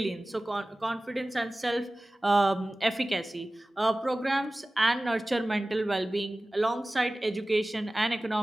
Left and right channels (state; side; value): normal; both; correlation 0.97